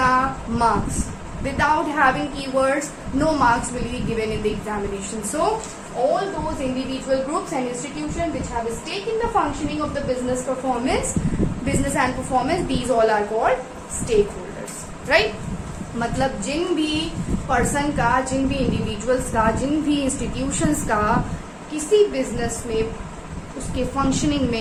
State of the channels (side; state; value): both; identical; correlation 1.00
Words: marks. Without having keywords, no marks will be given in the examination. So all those individual groups and institutions which have a stake in the functioning of the business and performance, these all are called stakeholders, right? मतलब जिन भी person का, जिन भी individuals का, जिन भी institutions का किसी business में उसके फंक्शनिंग